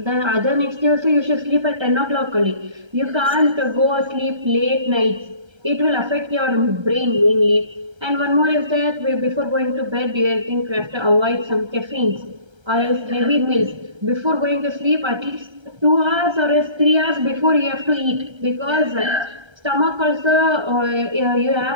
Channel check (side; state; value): left; late; 1.3 ms